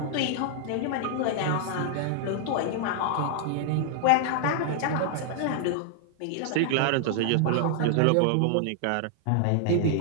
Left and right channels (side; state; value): both; different; correlation -0.01